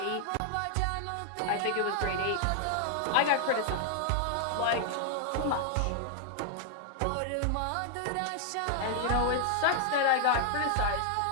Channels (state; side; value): different; both; correlation 0.00